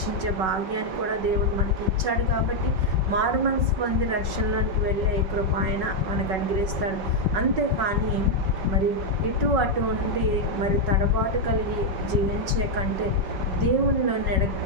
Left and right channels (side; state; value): left; late; 5.4 ms